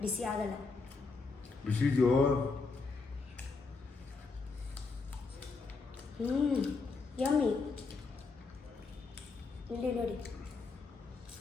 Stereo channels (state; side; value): quieter; right; 4.2 dB